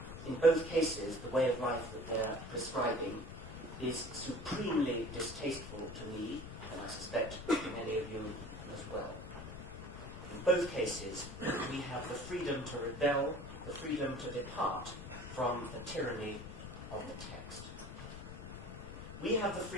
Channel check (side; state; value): left; noise; rumble, 10 dB below the sound